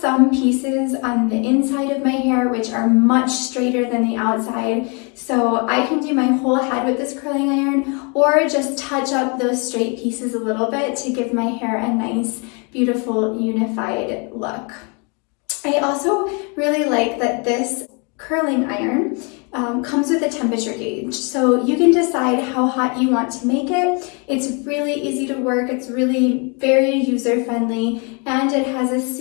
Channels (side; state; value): right; quieter; 34.0 dB